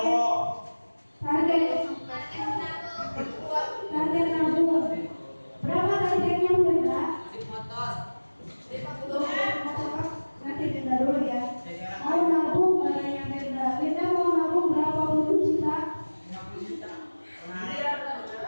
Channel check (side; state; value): both; inverted; correlation -1.00